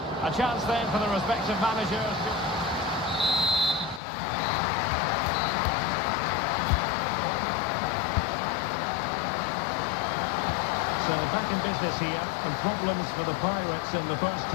A chance then for the respective managers. So back in business here, and problems for the Pirates in the first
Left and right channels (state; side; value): drops out; right; at 4.0 s